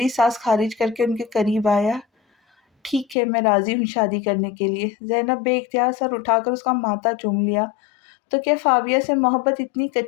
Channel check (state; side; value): drops out; right; at 3.2 s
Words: سانس خارج کر کے ان کے قریب آیا۔ ٹھیک ہے، میں راضی ہوں شادی کرنے کے لیے۔ زینب بے اختیار سر اٹھا کر اس کا ماتھا چوم لیا۔ تو کیا فابیہ سے محبت اتنی